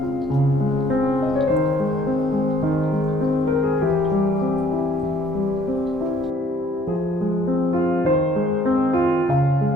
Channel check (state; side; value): normal; both; correlation 0.60